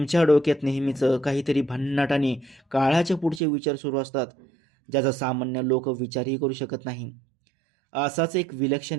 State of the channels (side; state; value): left; drops out; at 3.4 s